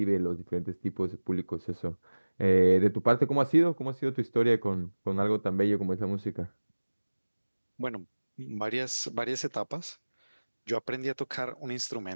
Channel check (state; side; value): inverted; both; correlation -1.00